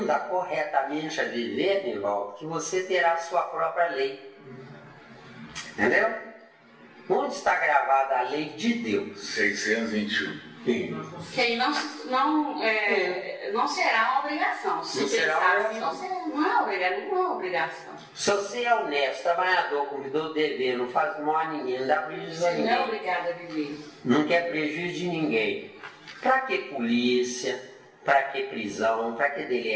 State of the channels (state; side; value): identical; both; correlation 1.00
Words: corretamente a viver, Nivaldo, que você terá a sua própria lei. Entendeu? Onde está gravada a lei de Deus? 621. Que aí não será uma obrigação. Se pensar assim, não é obrigação. Se você é honesto, trabalhador, cumprидor do dever, não faz mal a ninguém, não dá prejuízo a ninguém. Não é obrigado a viver. Não quer prejuízo de ninguém. Pra que polícia? Pra que prisão? Pra que